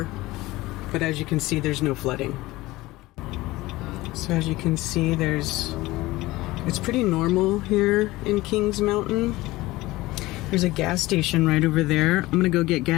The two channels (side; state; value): right; quieter; 19.2 dB